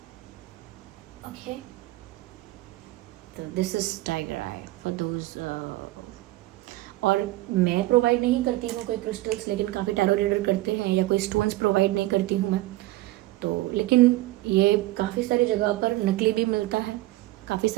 Okay, तो this is tiger eye for those. और मैं प्रोवाइड नहीं करती हूँ कोई क्रिस्टल्स, लेकिन काफ़ी टैरो रीडर करते हैं, या कोई स्टोन्स प्रोवाइड नहीं करती हूँ मैं तो। लेकिन ये काफ़ी सारी जगह पर नकली भी मिलता है, काफ़ी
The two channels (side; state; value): left; quieter; 18.0 dB